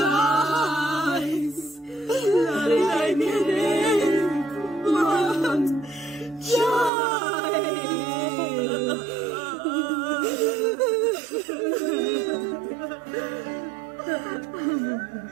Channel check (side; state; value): left; drops out; at 6.9 s